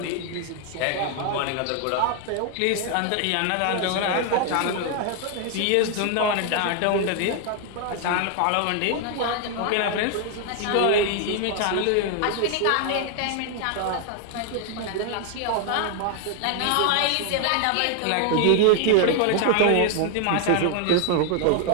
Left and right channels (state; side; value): different; both; correlation 0.00